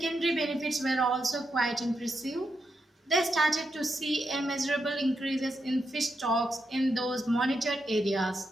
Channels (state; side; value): normal; both; correlation 0.84